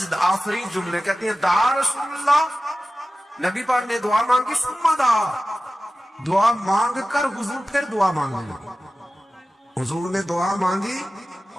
آفرین جملے. کہتے ہیں دعا رسول اللہ، نبی پاک نے دعا مانگی، ثم دعا، دعا مانگ کر حضور پھر دعا مانگنے لگے. حضور نے دعا مانگی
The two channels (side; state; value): both; normal; correlation 0.95